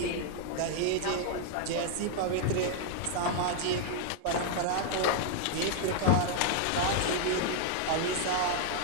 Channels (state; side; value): different; both; correlation 0.00